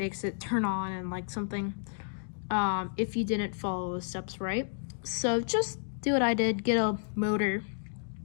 it turn on and like something if you didn't follow the steps right. So just do what I did, get a motor,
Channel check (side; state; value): right; silent; digital silence